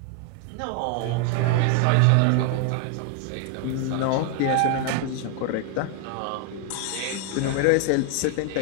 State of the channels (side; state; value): both; different; correlation 0.00